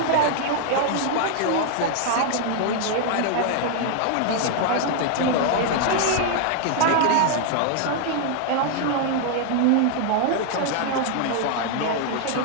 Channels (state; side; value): different; both; correlation 0.00